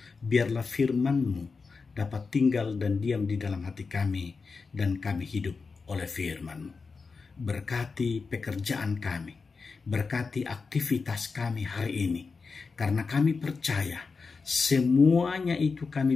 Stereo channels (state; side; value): quieter; right; 4.7 dB